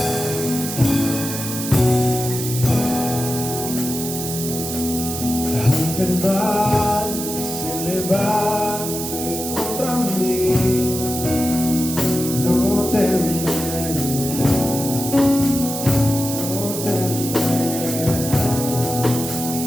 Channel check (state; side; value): noise; right; hiss, 6 dB below the sound